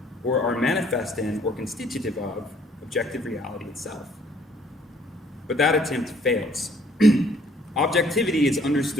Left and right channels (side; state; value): both; normal; correlation 0.61